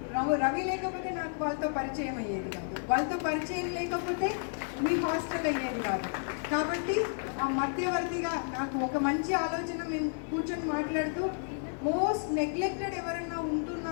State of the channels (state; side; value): silent; right; digital silence